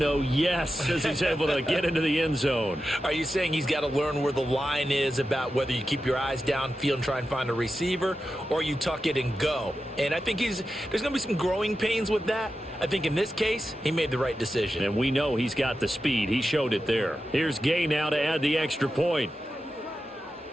yes, as he's able to get into the end zone. Are you saying he's got to learn where the line is about whether you keep your eyes downfield and try and find a receiver or you tuck it and go? And I think there's going to be some growing pains with that. I think in this case, he made the right decision. And we know he's got the speed. He showed it there. Here's Gay now to add the extra point.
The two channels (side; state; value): both; normal; correlation 0.91